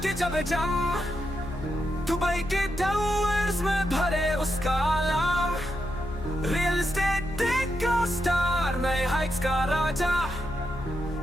जब जम, दुबई के टावर्स में भरे उसका नाम, रियल एस्टेट का स्टार, नए हाइट्स का राजा,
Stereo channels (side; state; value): left; noise; hum, 11 dB below the sound